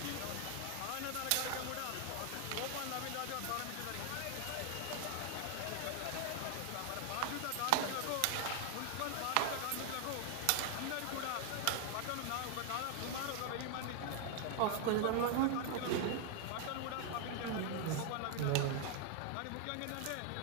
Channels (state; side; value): different; both; correlation 0.00